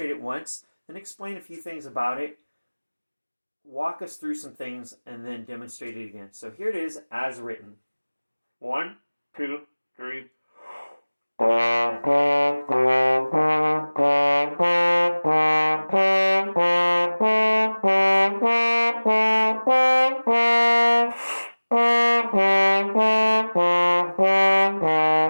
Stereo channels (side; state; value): both; inverted; correlation -1.00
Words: it once, then explain a few things about it, walk us through some things, and then demonstrate it again. So here it is as written. 1, 2, 3.